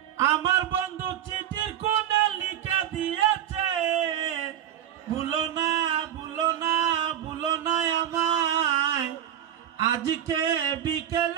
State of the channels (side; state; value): left; quieter; 10.8 dB